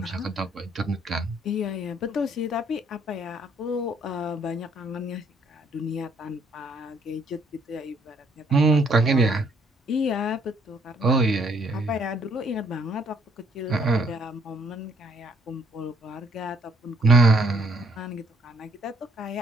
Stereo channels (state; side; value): normal; both; correlation 0.65